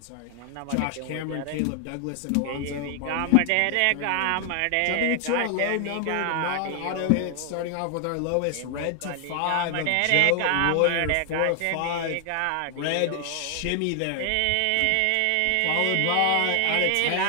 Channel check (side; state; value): both; different; correlation 0.00